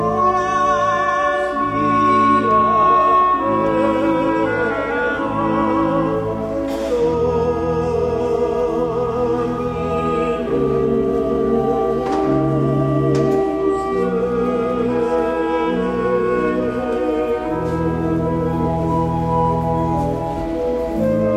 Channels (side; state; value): both; identical; correlation 1.00